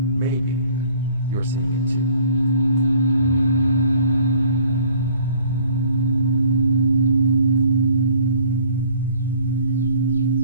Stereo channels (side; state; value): both; inverted; correlation -0.56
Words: maybe, you're seeing it too.